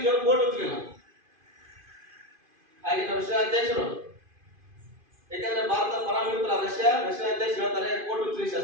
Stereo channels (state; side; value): late; left; 2.5 ms